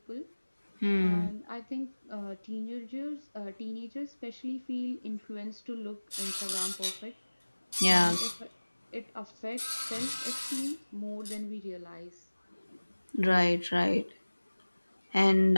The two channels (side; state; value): both; inverted; correlation -1.00